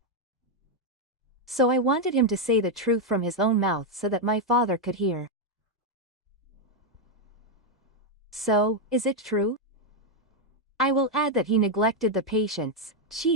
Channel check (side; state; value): both; normal; correlation 0.02